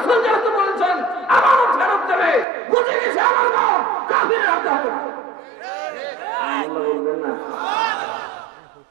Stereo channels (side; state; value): left; drops out; at 2.5 s